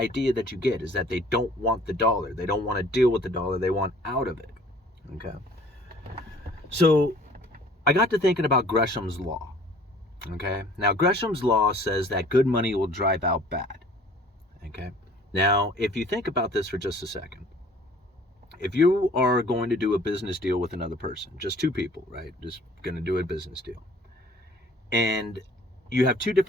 that you get, is that they don't want the dollar. They don't want to deal with the dollar. They want out of it. Okay. So I got to thinking about Gresham's Law. Okay. Now, Gresham's Law says that good money will drive out bad. Okay. Now, if you think about this for just a second, if you are going to do a business deal with another person, just two people, right? Just going to do a business deal. And you have two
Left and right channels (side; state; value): both; normal; correlation 0.52